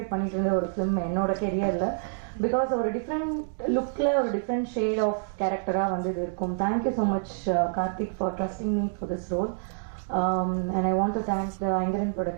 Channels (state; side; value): silent; left; digital silence